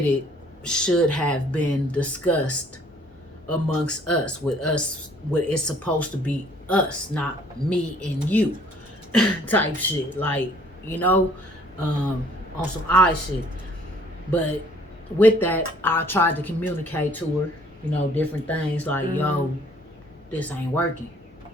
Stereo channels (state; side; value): normal; both; correlation 0.59